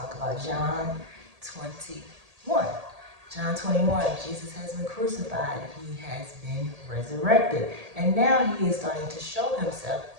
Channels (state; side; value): late; left; 1.8 ms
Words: about John 21. John 21, Jesus has been crucified. He has been resurrected. And now he is starting to show himself